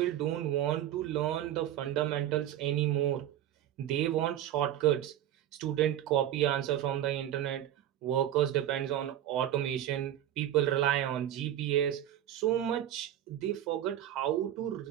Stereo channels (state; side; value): quieter; left; 11.8 dB